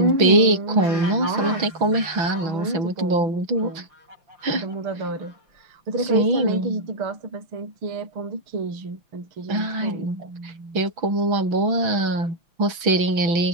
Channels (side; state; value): left; late; 6.1 ms